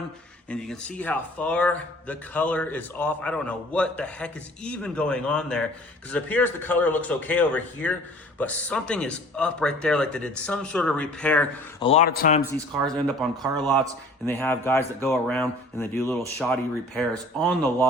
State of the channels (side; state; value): both; normal; correlation 0.50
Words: And you can see how far the color is off. I don't know what the heck is even going on there, because it appears the color looks okay over here, but something is up right there, like they did some sort of repair. A lot of times these cars end up on car lots and they have guys that go around and they do little shoddy repairs on the